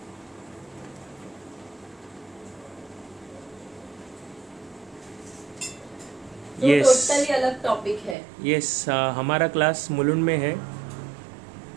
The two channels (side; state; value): left; drops out; at 8.2 s